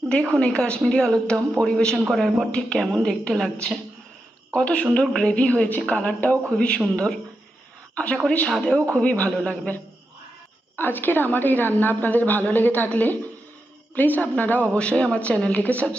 দেখুন এই কাশ্মীরি আলুর দম পরিবেশন করার পর ঠিক কেমন দেখতে লাগছে। কত সুন্দর গ্রেভি হয়েছে, কালারটাও খুবই সুন্দর। আশা করি স্বাদেও খুবই ভালো লাগবে। আজকের আমার এই রান্না আপনাদের ভালো লেগে থাকলে প্লিজ আপনারা অবশ্যই আমার চ্যানেলটিকে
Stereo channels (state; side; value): normal; both; correlation 0.87